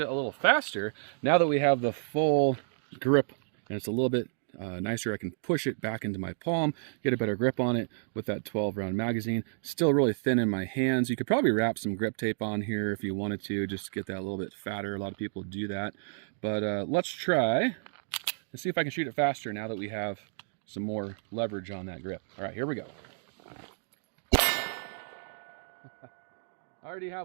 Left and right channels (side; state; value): left; silent; digital silence